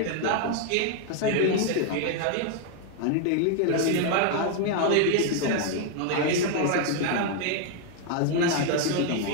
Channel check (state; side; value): different; both; correlation 0.01